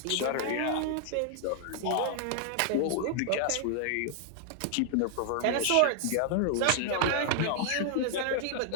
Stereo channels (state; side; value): different; both; correlation 0.00